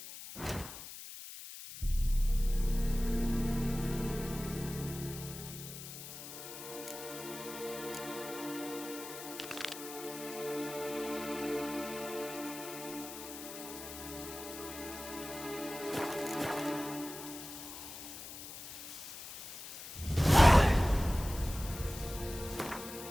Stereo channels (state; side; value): noise; left; hiss, 11 dB below the sound